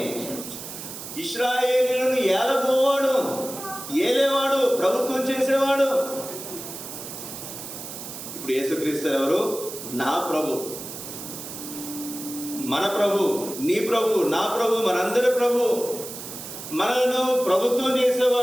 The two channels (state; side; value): noise; right; hiss, 10 dB below the sound